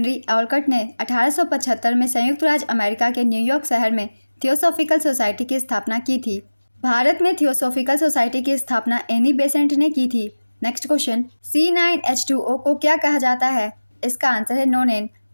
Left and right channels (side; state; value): both; inverted; correlation -1.00